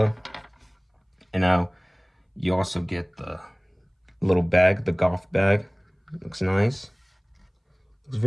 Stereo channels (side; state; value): both; identical; correlation 1.00